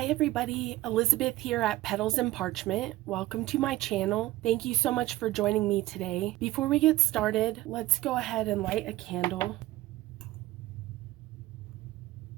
everybody, Elizabeth here at Petals and Parchment. Welcome to my channel. Thank you so much for joining me today. Before we get started, let's go ahead and light a candle.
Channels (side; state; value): left; quieter; 17.5 dB